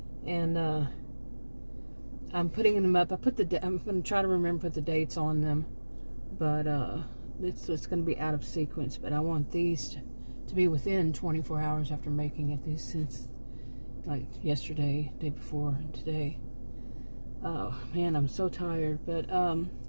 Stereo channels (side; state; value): both; inverted; correlation -1.00